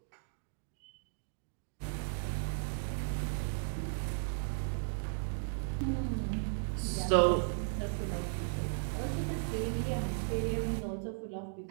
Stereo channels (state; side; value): silent; left; digital silence